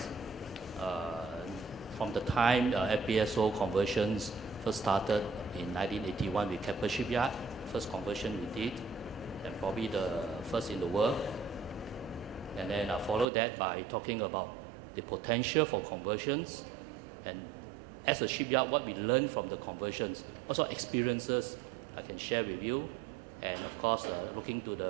from the time FPSO conversions first started in 1981 with Keppel Shipyard. First conversion we did, and probably the first in the world. And then I follow that by talking about the potential for conversions, and as a shipyard, what we learned from the conversions, also experiences I can share with you, and of course looking to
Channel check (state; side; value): drops out; left; at 13.2 s